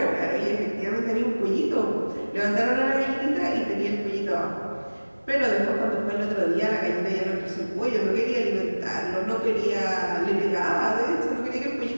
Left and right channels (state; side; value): inverted; both; correlation -1.00